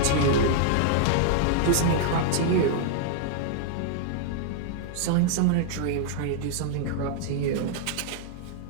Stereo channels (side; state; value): both; different; correlation -0.01